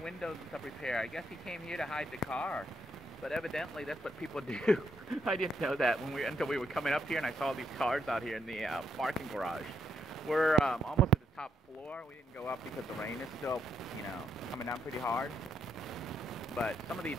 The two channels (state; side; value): normal; both; correlation 0.77